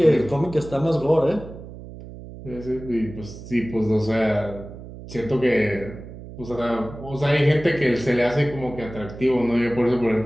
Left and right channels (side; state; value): right; noise; hum, 14 dB below the sound